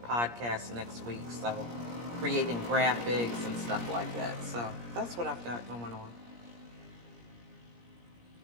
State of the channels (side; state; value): left; late; 17 ms